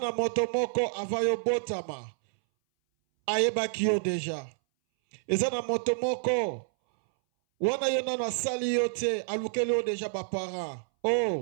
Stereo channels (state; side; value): silent; left; 59 dB below the other